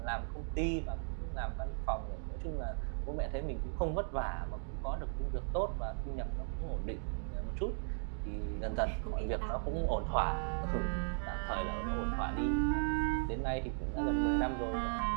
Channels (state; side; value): silent; left; 53 dB below the other